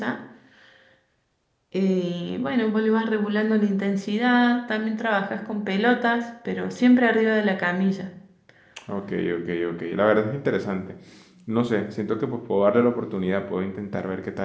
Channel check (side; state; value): both; identical; correlation 1.00